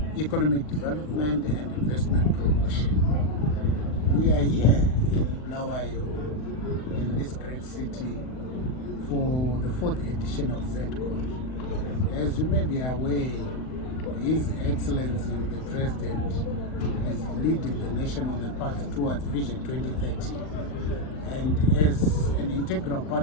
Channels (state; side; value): late; right; 39 ms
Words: Economic Development and Investment Promotion. We are here in Bulawayo, in this great city, for the 4th edition of ZEDCON. As you may be aware, His Excellency the President is leading the nation on the path towards Vision 2030. And as an integral